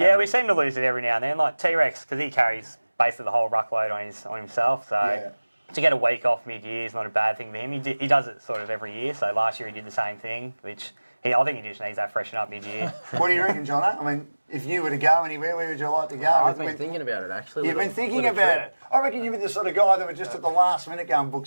we seem to lose it every now and then. Like T-Rex, because he carries basically the whole ruckload on himself. So to get a week off mid-year is not a bad thing for him. He does it sort of every year. So last year he did the same thing, which I think he just needs that freshen up mid-year. What do you reckon, John? I mean, if you were to go anywhere, where would you like to go? I've been thinking about it, actually. You've been thinking about it? I reckon you'd be the sort of guy that would just at the last minute go and book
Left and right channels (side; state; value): both; inverted; correlation -1.00